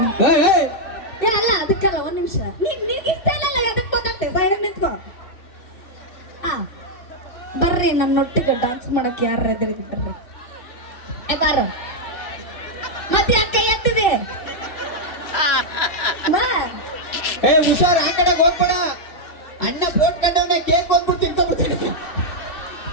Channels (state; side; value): late; right; 2.7 ms